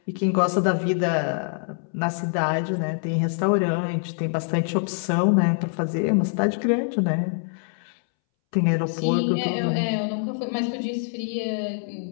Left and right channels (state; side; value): silent; right; 62 dB below the other